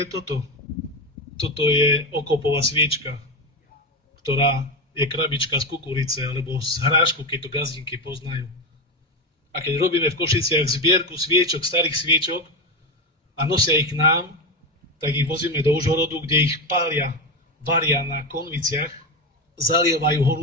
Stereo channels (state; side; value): normal; both; correlation 0.15